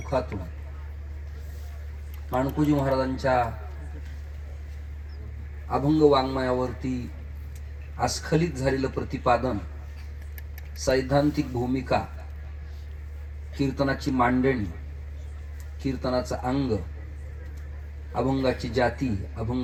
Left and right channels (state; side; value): identical; both; correlation 1.00